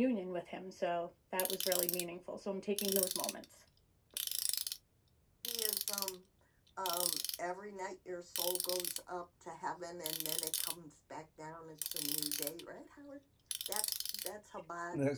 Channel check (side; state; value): both; identical; correlation 1.00